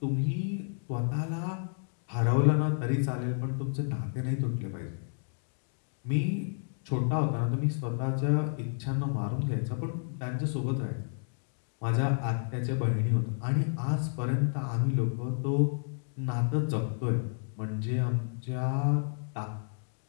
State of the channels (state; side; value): silent; right; digital silence